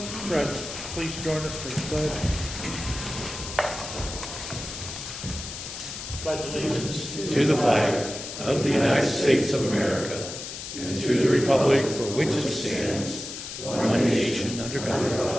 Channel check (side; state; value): left; noise; hiss, 9 dB below the sound